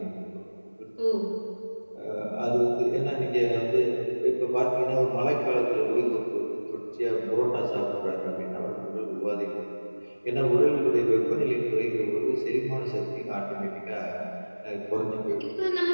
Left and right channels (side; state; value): both; inverted; correlation -1.00